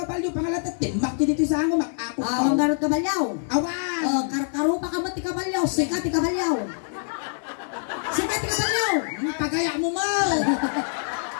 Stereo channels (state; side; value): silent; right; 62 dB below the other